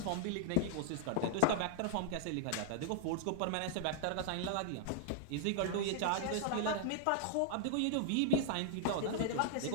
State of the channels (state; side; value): different; both; correlation -0.01